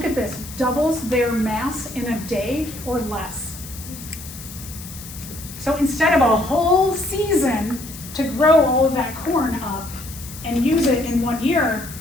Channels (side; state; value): left; noise; hiss, 14 dB below the sound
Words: at this, doubles their mass in a day or less. So instead of a whole season to grow all of that corn up and use it in 1 year,